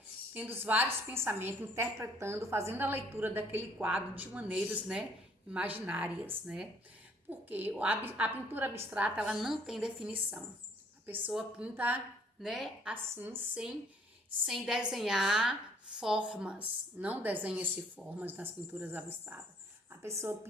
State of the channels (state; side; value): normal; both; correlation 0.62